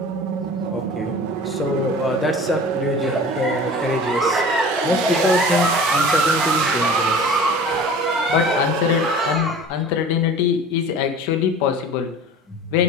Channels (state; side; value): normal; both; correlation 0.41